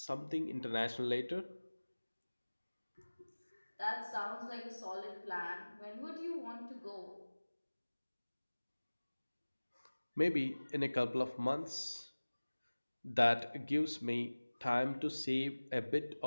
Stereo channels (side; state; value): both; inverted; correlation -1.00